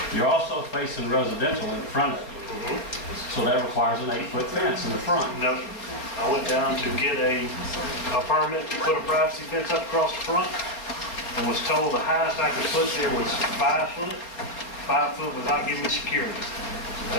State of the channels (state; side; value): late; right; 4.2 ms